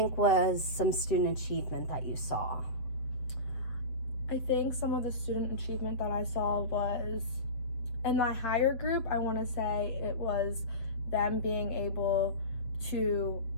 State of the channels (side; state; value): right; late; 7.7 ms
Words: was some student achievement that you saw? I think some of the student achievement that I saw was in my higher group. I want to say it was them being able to